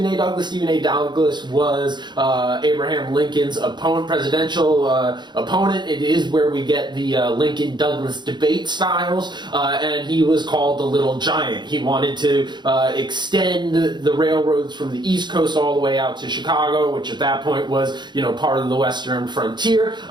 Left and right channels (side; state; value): left; late; 0.21 ms